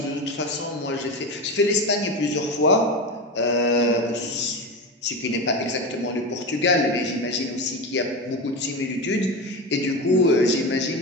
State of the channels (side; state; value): both; normal; correlation 0.21